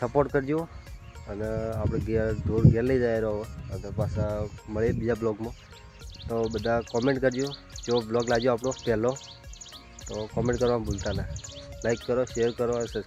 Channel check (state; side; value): identical; both; correlation 1.00